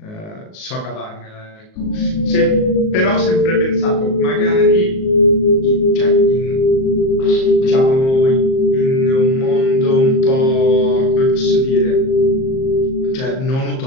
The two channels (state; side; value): late; right; 38 ms